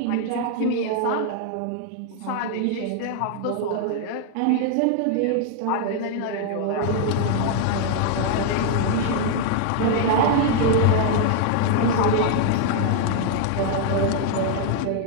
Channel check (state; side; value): different; both; correlation 0.00